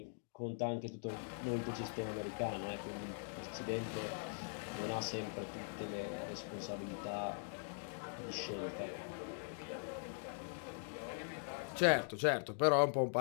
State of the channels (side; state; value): right; silent; digital silence